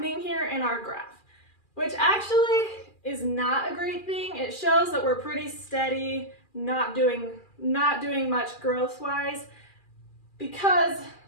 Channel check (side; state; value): right; late; 2.4 ms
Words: here in our graph, which actually is not a great thing. It shows that we're pretty steady, not doing much growth-wise, because